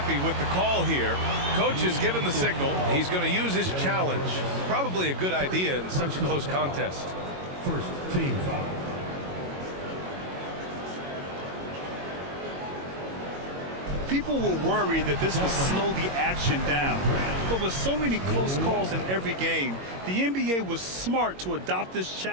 with the call here. Coach has given the signal. He's going to use his challenge. Probably a good idea in such a close contest. First team foul. People were worried that this would slow the action down. But with so many close calls in every game, the NBA was smart to adopt this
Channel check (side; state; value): left; late; 22 ms